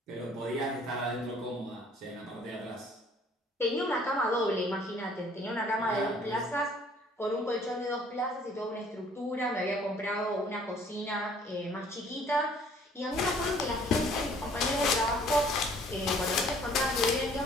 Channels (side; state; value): both; normal; correlation 0.57